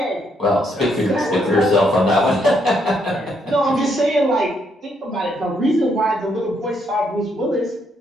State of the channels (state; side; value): normal; both; correlation 0.74